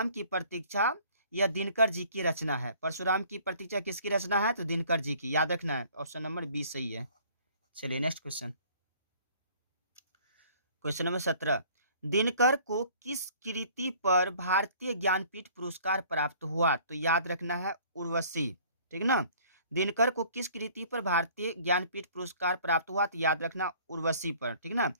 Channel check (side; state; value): both; inverted; correlation -0.53